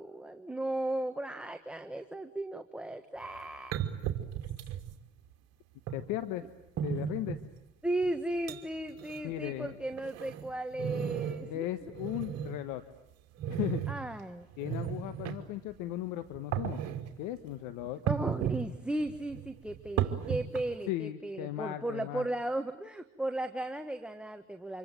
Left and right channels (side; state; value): both; normal; correlation 0.56